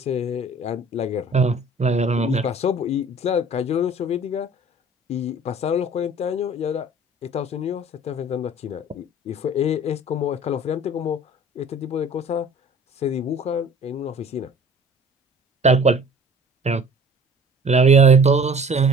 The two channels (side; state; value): both; normal; correlation 0.48